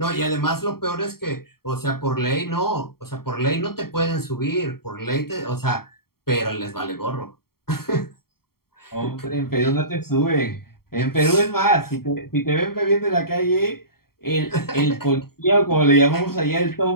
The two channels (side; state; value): right; late; 0.94 ms